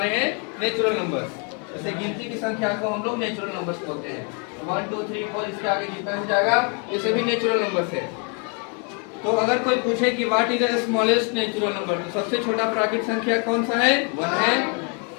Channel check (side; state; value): right; quieter; 37.4 dB